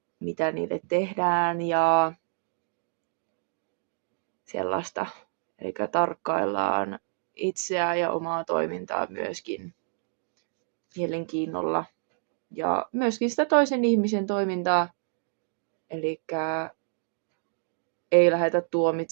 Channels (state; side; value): silent; left; digital silence